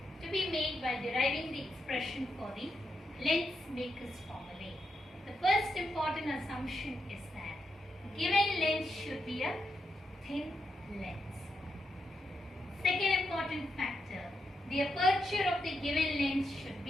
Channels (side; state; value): both; normal; correlation 0.83